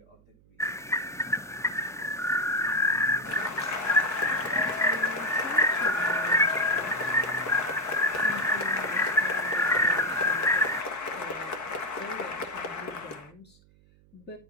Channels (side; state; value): right; noise; hum, 29 dB below the sound